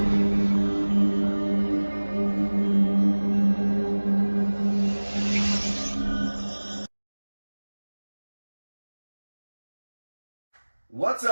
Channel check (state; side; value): inverted; both; correlation -1.00